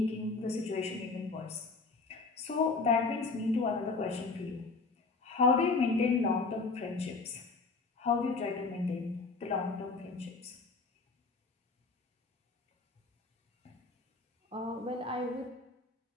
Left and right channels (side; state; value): right; quieter; 4.0 dB